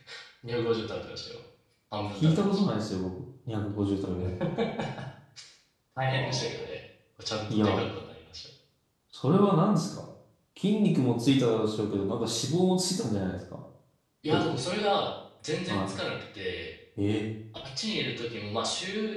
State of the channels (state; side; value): identical; both; correlation 1.00